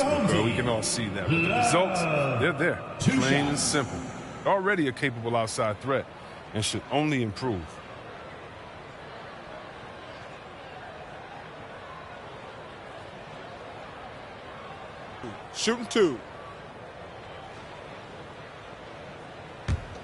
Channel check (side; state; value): both; identical; correlation 1.00